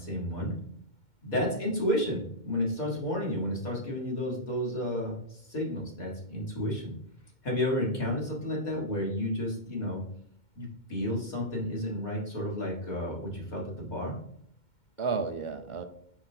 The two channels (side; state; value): right; late; 2.2 ms